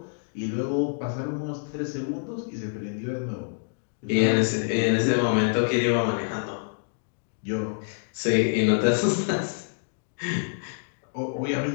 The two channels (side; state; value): right; silent; digital silence